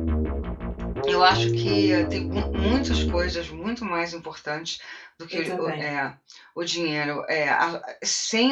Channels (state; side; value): identical; both; correlation 1.00